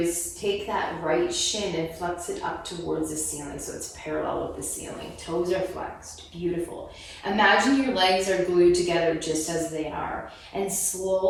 take that right shin and flex it up towards the ceiling so it's parallel with the ceiling. Toes are flexed. Beautiful. Imagine your legs are glued together just as they are. And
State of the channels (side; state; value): both; identical; correlation 1.00